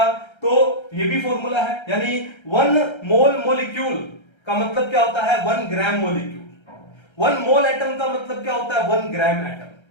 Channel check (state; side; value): late; right; 1.3 ms